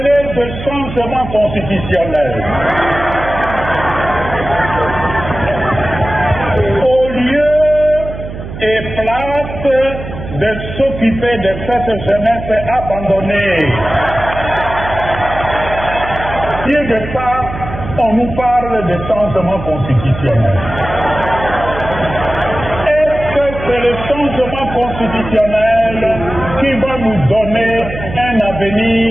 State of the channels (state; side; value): noise; right; hum, 10 dB below the sound